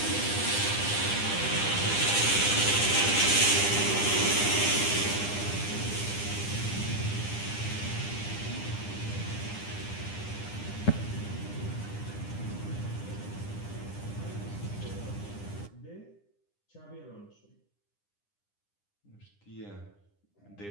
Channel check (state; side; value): late; right; 9.9 ms